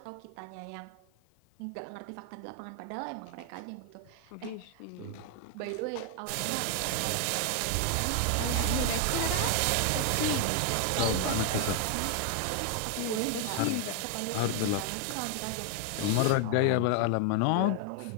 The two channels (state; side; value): different; both; correlation 0.00